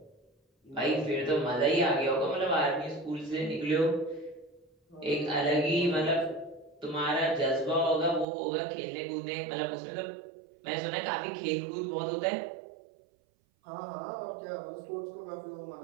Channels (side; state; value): left; drops out; at 8.2 s